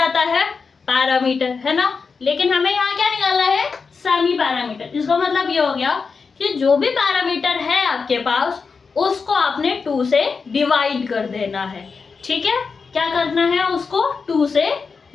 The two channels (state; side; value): quieter; right; 5.0 dB